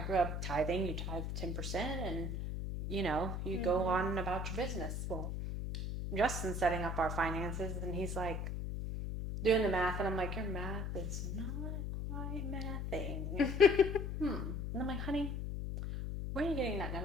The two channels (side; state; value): left; noise; hum, 3 dB below the sound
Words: up tithing. You tithe 10% and, you go on about your business. Well, Justin's setting up our finances and he's like doing the math. And I'm like, your math is not quite mathing. And I'm like, honey, where are you getting that